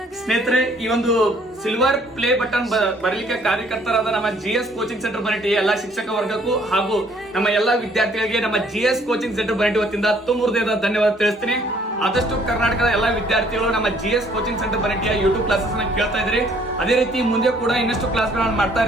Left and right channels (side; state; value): both; normal; correlation 0.62